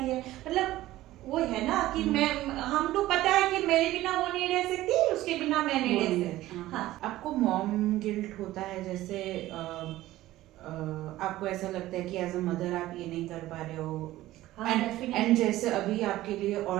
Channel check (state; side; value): quieter; left; 15.8 dB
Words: है। मतलब वो है ना कि मैं, हम लोग पता है कि मेरे बिना वो नहीं रह सकती, उसके बिना मैं नहीं रह सकती। हाँ। आपको मॉम गिल्ट होता है? जैसे आपको ऐसा लगता है कि एज अ मदर आप ये नहीं कर पा रहे हो, एंड जैसे अभी आपके लिए